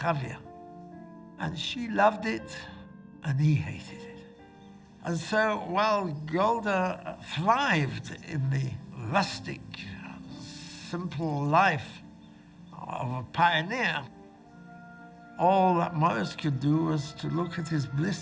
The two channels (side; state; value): both; identical; correlation 1.00